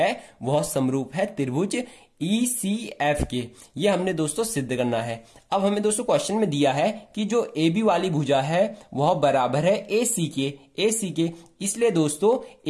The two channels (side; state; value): both; identical; correlation 1.00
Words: वह समरूप है त्रिभुज ECF के। ये हमने दोस्तों सिद्ध करना है। अब हमें दोस्तों क्वेश्चन में दिया है कि जो AB वाली भुजा है वह बराबर है AC के। इसलिए दोस्तों